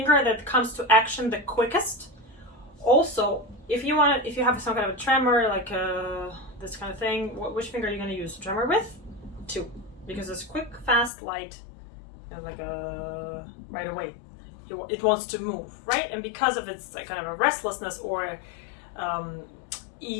that comes to action the quickest. Also, if you have some kind of a tremor, like this kind of thing, which finger are you going to use to tremor with? 2, because it's quick, fast, light, and like right away. It wants to move, right? And because of its kind of a restlessness or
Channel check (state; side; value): drops out; right; at 11.1 s